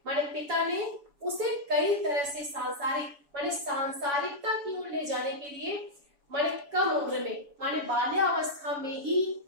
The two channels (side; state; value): left; late; 7.0 ms